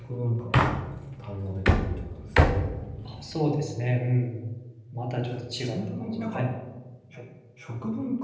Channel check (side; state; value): both; identical; correlation 1.00